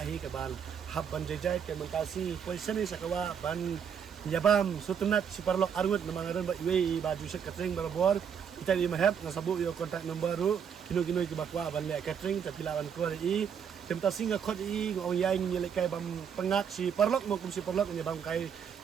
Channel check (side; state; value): left; quieter; 7.6 dB